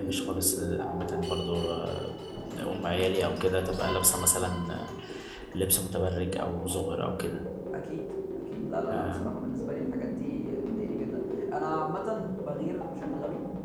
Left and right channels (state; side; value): identical; both; correlation 1.00